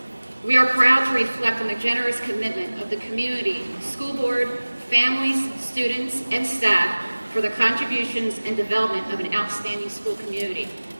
We are proud to reflect on the generous commitment of the community, school board, families, students, and staff for the contributions and development of an outstanding school community.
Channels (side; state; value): both; inverted; correlation -1.00